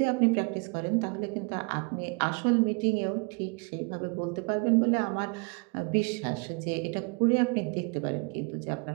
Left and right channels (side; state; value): left; quieter; 32.1 dB